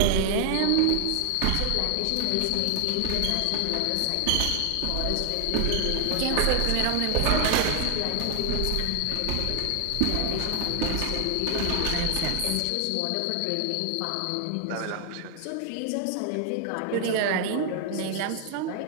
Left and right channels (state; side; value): different; both; correlation 0.00